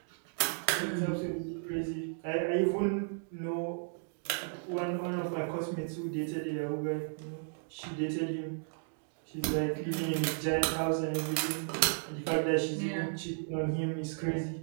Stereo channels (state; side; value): silent; left; digital silence